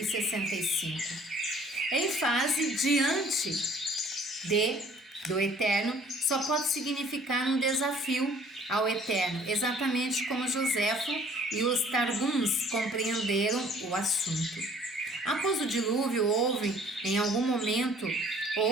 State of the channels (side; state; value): both; normal; correlation 0.55